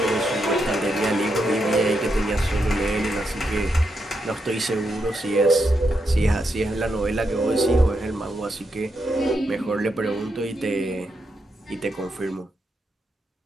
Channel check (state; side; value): normal; both; correlation 0.82